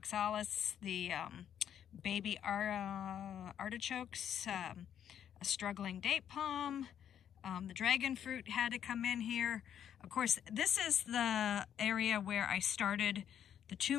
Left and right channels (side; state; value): right; quieter; 9.4 dB